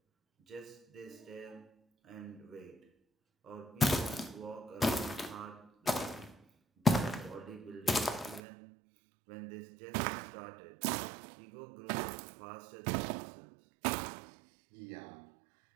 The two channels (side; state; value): left; drops out; at 8.4 s